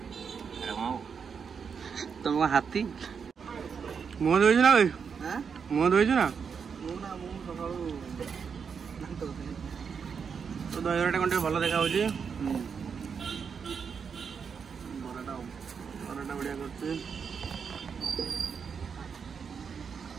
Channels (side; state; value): left; quieter; 6.3 dB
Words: तुम हाथी मुह धोई ना भाई मुह धोई ना तो दहीबराटा कौन भल देखा बराटा बढ़िया कर